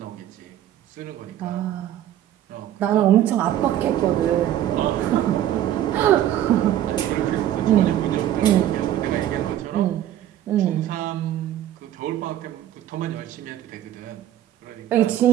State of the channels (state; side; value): quieter; left; 12.1 dB